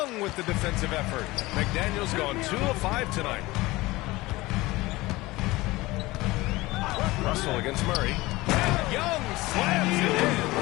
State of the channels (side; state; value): right; quieter; 20.1 dB